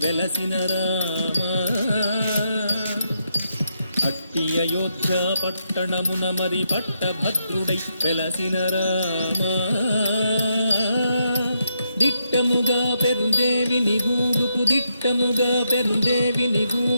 వెలసిన రామ అట్టి అయోధ్య పట్టణమున మరి పట్టభద్రుడై వెలసిన రామ దిట్టముగా పెరుందేవి నిగూడుకు దిట్టముగా పెరుందేవి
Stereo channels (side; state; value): both; inverted; correlation -0.80